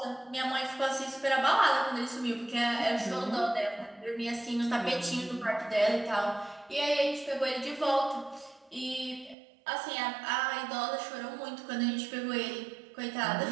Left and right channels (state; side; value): drops out; left; at 9.3 s